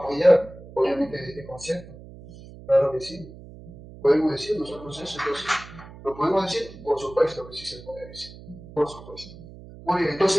obviamente, de este concepto. Claro que sí. Podemos decir nosotros eso, entonces, ¿lo podemos decir? Por supuesto que sí se puede decir. Por supuesto. Muy bien,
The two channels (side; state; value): right; noise; hum, 17 dB below the sound